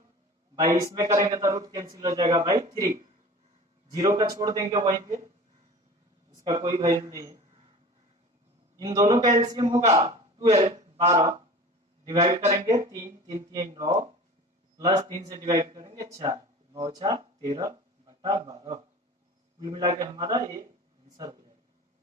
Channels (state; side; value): normal; both; correlation 0.38